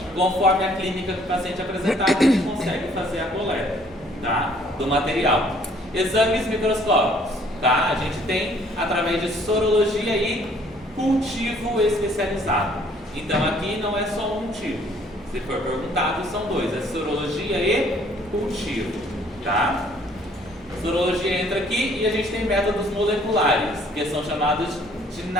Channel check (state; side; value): normal; both; correlation 0.60